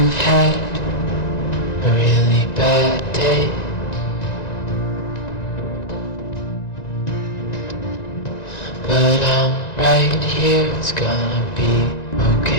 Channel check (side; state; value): right; late; 1.9 ms